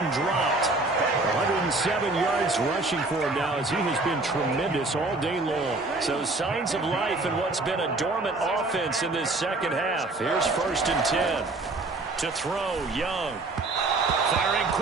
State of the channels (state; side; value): quieter; left; 3.2 dB